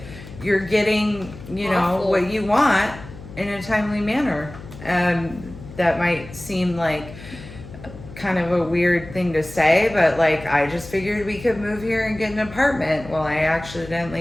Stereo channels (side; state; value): left; noise; hum, 15 dB below the sound